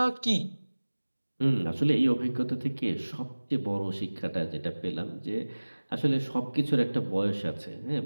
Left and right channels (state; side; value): inverted; both; correlation -1.00